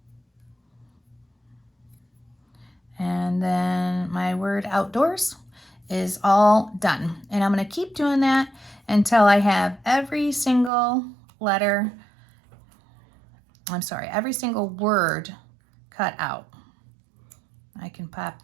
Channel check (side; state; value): left; drops out; at 10.7 s